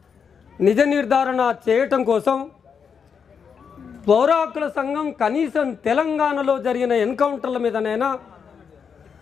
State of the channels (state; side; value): quieter; right; 6.6 dB